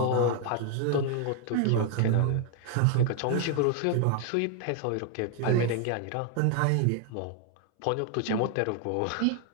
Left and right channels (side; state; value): both; different; correlation 0.00